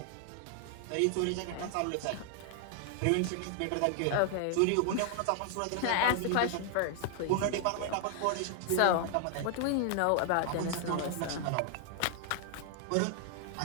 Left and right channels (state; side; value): different; both; correlation 0.00